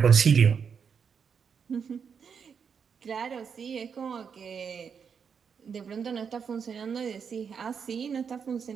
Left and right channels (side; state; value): left; quieter; 6.6 dB